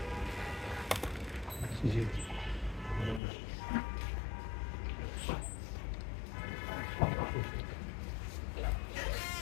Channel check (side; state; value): right; drops out; at 3.2 s